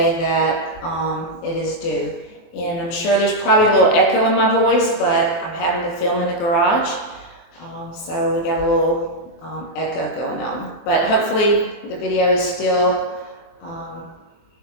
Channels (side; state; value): right; late; 23 ms